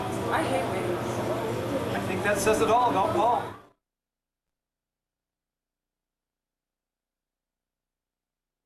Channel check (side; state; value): both; identical; correlation 1.00